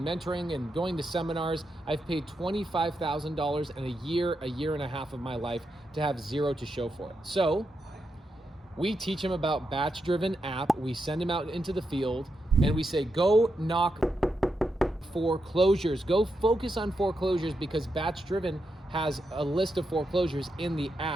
mentoring and going to seminars. I've paid $25,000 in a year and a half of my life to have zero to show for it. So we teach him about batch-driven app. We send him out into the field and we say, go knock foreclosures. Go focus on foreclosures, because batch-driven has a list of foreclosures in the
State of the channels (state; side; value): normal; both; correlation 0.85